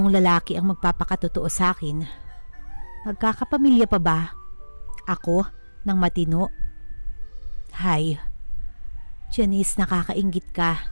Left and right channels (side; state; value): both; inverted; correlation -1.00